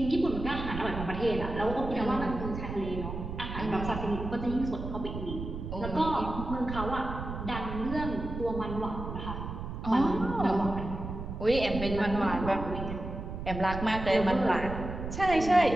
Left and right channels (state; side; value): noise; right; rumble, 7 dB below the sound